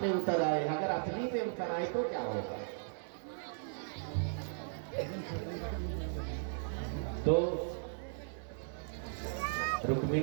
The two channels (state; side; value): silent; left; digital silence